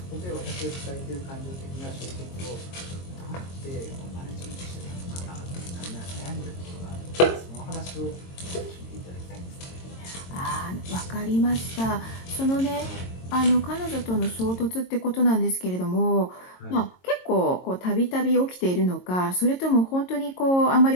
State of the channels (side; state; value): right; late; 22 ms